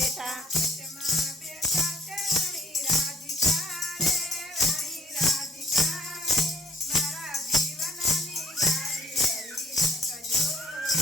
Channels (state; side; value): normal; both; correlation 0.58